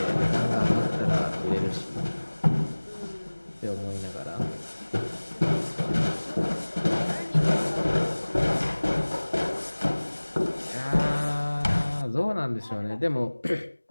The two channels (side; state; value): both; inverted; correlation -1.00